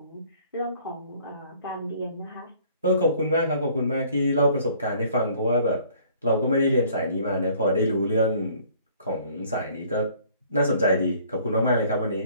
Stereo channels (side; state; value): both; inverted; correlation -0.57